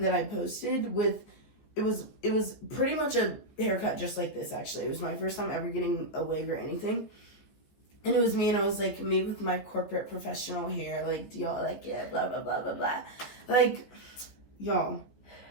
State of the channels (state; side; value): late; right; 15 ms